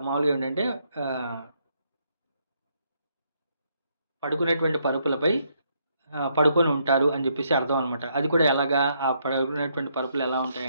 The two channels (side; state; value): both; inverted; correlation -0.74